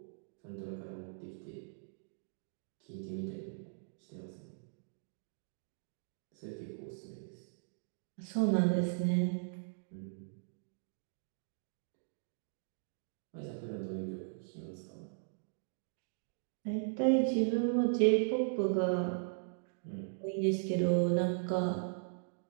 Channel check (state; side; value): silent; left; digital silence